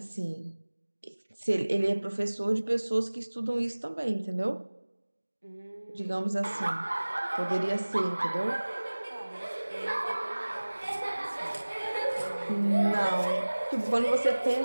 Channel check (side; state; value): both; inverted; correlation -1.00